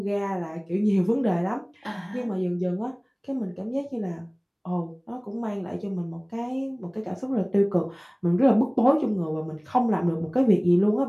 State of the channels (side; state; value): both; identical; correlation 1.00